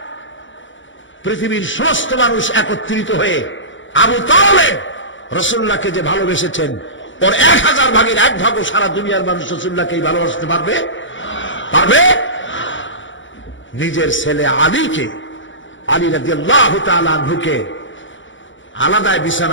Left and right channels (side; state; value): right; late; 0.55 ms